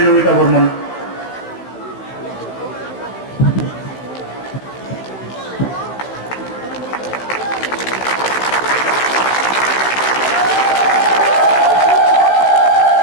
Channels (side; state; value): right; late; 15 ms